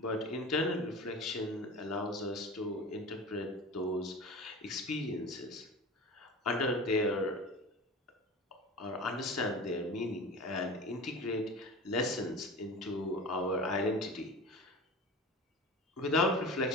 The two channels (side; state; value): both; normal; correlation 0.34